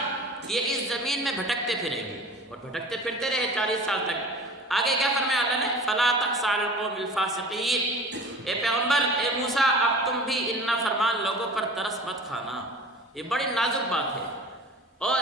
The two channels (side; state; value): both; normal; correlation 0.40